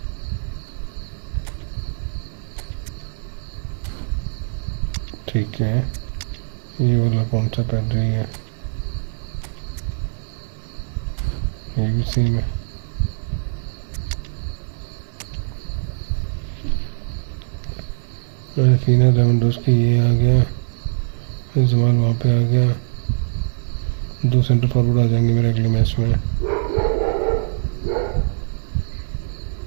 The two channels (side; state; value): left; silent; 64 dB below the other